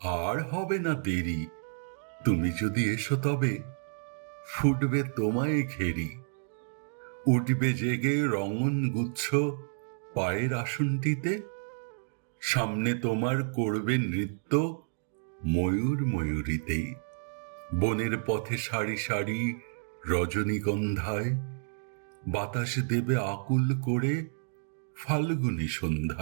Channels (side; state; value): left; silent; digital silence